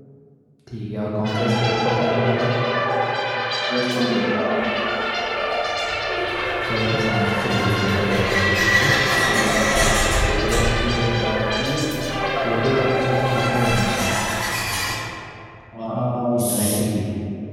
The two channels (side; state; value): both; identical; correlation 1.00